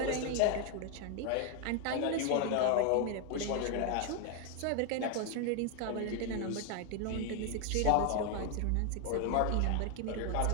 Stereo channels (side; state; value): both; different; correlation 0.01